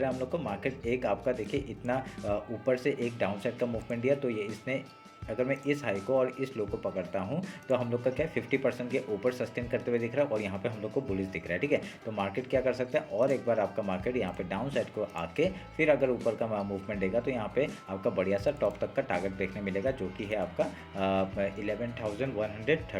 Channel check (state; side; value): identical; both; correlation 1.00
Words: है हम लोग को, मार्केट एक आपका देखिए इतना ऊपर से एक डाउन साइड का मूवमेंट दिया, तो ये इसने अगर मैं इस हाई को और इस लो को पकड़ता हूँ तो हम लोग का क्या 50% के ऊपर सस्टेन करते हुए दिख रहा है और यहाँ पे हम लोग को बुलिश दिख रहा है। ठीक है, तो मार्केट क्या कर सकता है, और एक बार आपका मार्केट यहाँ पे डाउन साइड को आके फिर अगर ऊपर का मूवमेंट देगा तो यहाँ पे आपका बढ़िया सा टॉप तक का टारगेट देखने मिलेगा, जो कि है आपका